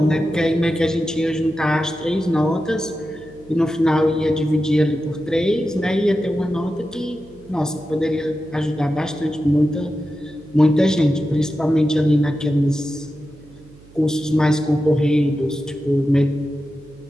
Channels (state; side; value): noise; right; hum, 24 dB below the sound